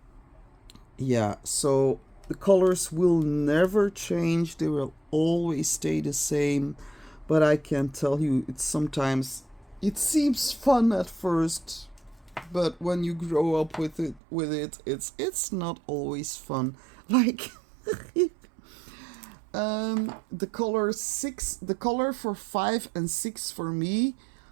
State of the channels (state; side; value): drops out; left; at 14.2 s